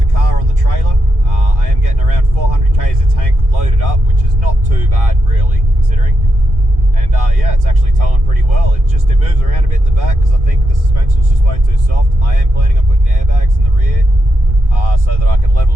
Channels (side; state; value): left; late; 1.8 ms